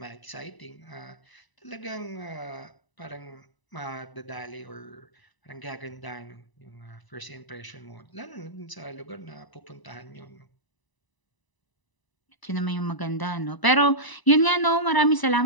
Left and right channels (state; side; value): late; right; 1.0 ms